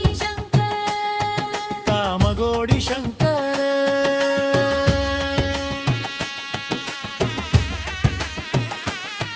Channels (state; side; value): identical; both; correlation 1.00